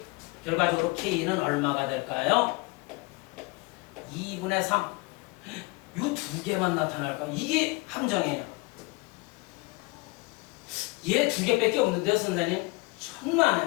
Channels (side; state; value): right; quieter; 25.5 dB